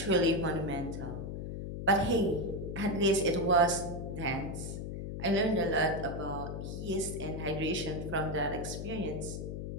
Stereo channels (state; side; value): noise; left; hum, 6 dB below the sound